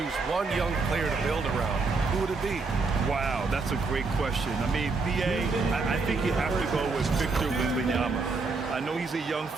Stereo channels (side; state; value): left; quieter; 4.0 dB